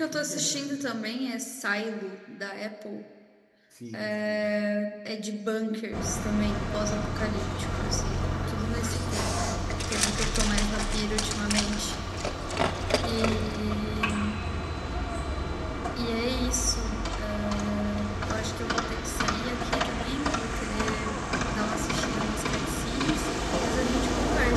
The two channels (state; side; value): identical; both; correlation 1.00